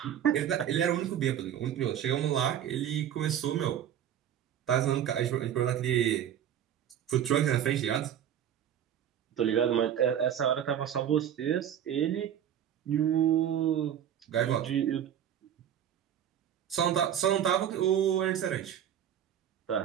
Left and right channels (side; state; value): left; quieter; 9.9 dB